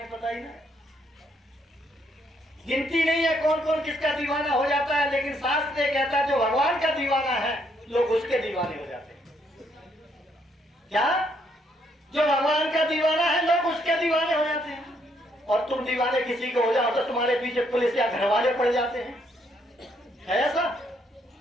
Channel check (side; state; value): both; normal; correlation 0.72